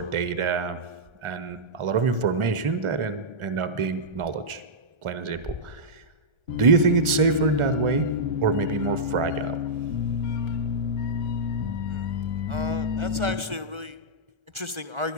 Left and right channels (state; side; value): late; left; 1.4 ms